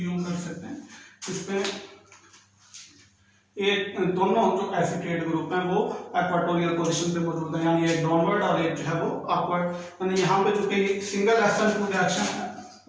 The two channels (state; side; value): identical; both; correlation 1.00